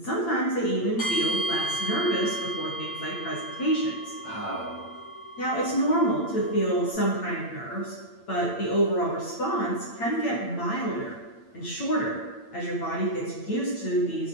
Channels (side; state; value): right; late; 8.8 ms